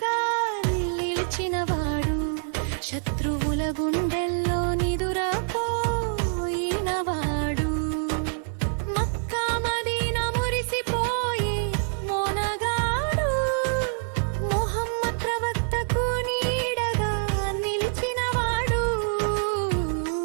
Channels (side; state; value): left; silent; digital silence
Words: నిలిచినవాడు, శత్రువుల గుండెల్లో నిదురపోయినవాడు. మక్కా మదీనా మురిసిపోయి మోనగాడు, ముహమ్మద్ ప్రవక్తకు నీడగా నిలిచినవాడు.